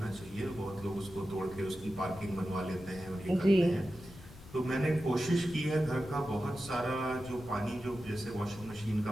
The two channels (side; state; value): left; noise; rumble, 18 dB below the sound